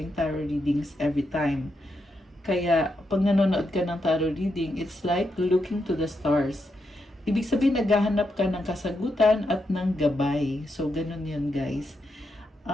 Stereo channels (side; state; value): both; normal; correlation 0.83